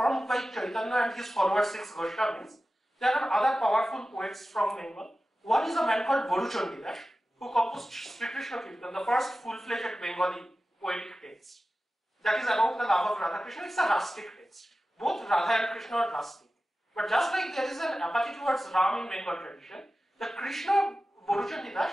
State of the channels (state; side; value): normal; both; correlation 0.95